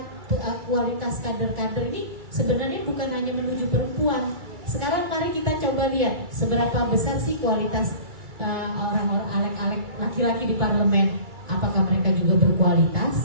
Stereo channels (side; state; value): left; late; 2.3 ms